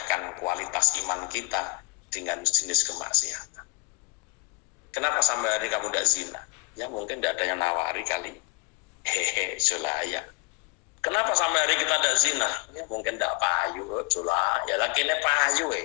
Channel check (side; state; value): right; quieter; 29.0 dB